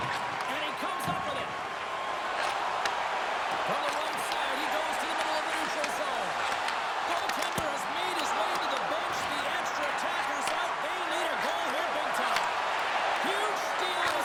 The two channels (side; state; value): both; identical; correlation 1.00